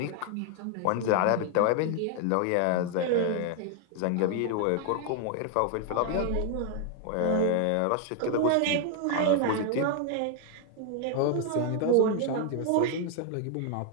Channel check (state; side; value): different; both; correlation 0.00